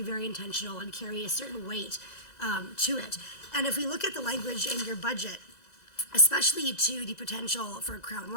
very intentional and carry a certain weight to it. And if we look at the language in your budget, especially to the potential for crown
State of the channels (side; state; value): right; late; 2.0 ms